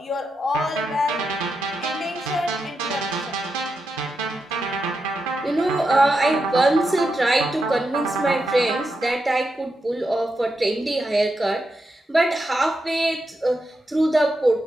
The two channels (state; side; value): normal; both; correlation 0.86